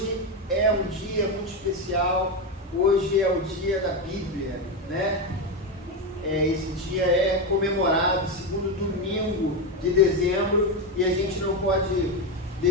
é um dia muito especial. Hoje é o dia da Bíblia, né? Esse dia é comemorado, segundo domingo de dezembro, e a gente não pode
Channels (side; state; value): both; normal; correlation 0.11